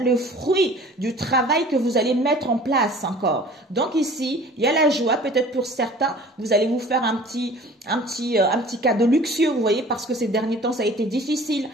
fruit du travail que vous allez mettre en place encore. Donc ici, il y a la joie. Peut-être pour certains, vous allez vous faire un petit cadeau luxueux, vous voyez, parce que ces derniers temps, ça a été difficile,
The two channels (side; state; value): both; normal; correlation 0.47